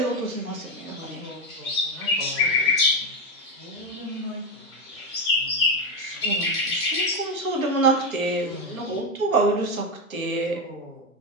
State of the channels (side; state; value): both; normal; correlation 0.09